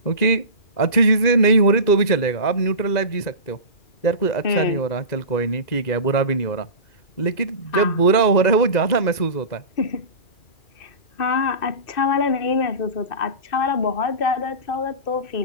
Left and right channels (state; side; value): late; right; 2.0 ms